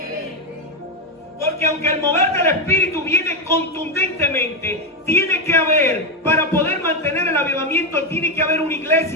Porque aunque el mover del Espíritu viene contundentemente, tiene que haber, para poder mantener el avivamiento, tiene que haber una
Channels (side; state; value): both; normal; correlation 0.08